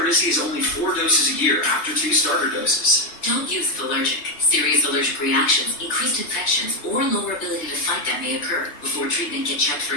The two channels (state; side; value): late; right; 3.0 ms